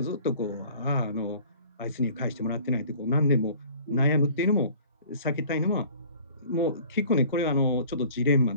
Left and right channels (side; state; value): both; inverted; correlation -0.49